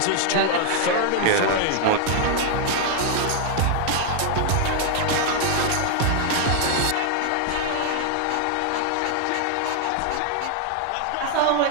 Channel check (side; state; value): both; different; correlation 0.00